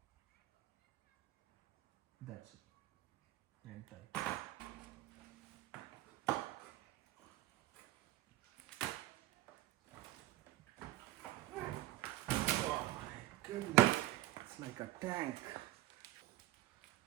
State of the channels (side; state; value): left; quieter; 16.2 dB